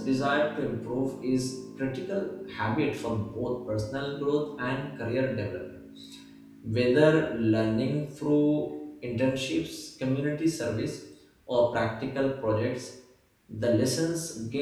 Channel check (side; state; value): both; identical; correlation 1.00